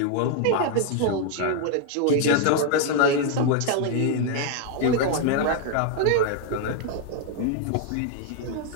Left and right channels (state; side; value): different; both; correlation 0.01